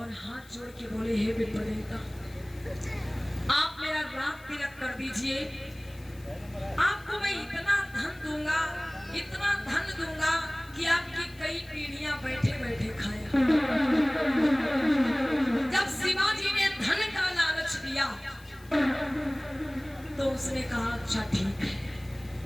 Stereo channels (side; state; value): left; noise; hiss, 25 dB below the sound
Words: हाथ जोड़ के बोले, हे विप्र देवता, आप मेरा रात तिलक कर दीजिए, आपको मैं इतना धन दूंगा, इतना धन दूंगा कि आपकी कई पीढ़ियां बैठे बैठे खाए। जब शिवाजी ने धन का लालच दिया तो उसने कहा अच्छा ठीक है।